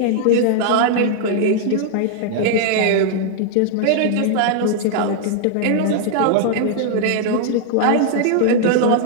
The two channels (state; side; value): different; both; correlation -0.01